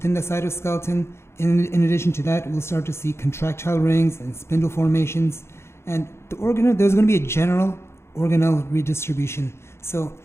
the cytoskeleton. In addition to that, we'll start to see contractile rings and spindle formations. And there's going to be a general organelle redistribution. So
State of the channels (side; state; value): right; late; 0.13 ms